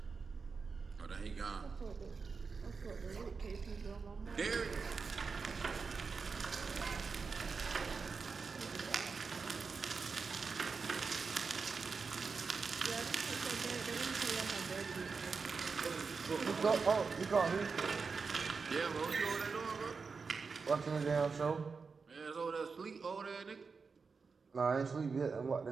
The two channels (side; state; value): left; quieter; 4.9 dB